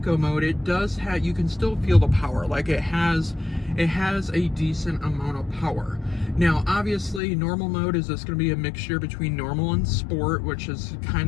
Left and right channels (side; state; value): right; drops out; at 7.2 s